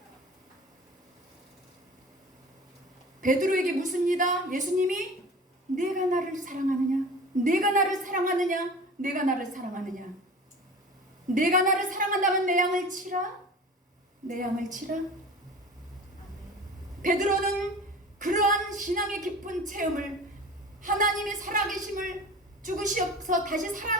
베드로에게 묻습니다. 예수님이 내가 나를 사랑하느냐? 내가 나를 사랑하느냐? 내가 나를 사랑하느냐? 내가 나를 사랑한다면 내 양을 치라? 내 양을 치라? 베드로는 그러한 신앙의 깊은 체험을, 하나님의 살아계심을, 죽으시어서 다시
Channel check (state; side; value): normal; both; correlation 0.38